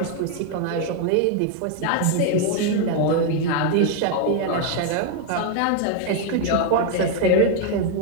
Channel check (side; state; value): both; different; correlation 0.00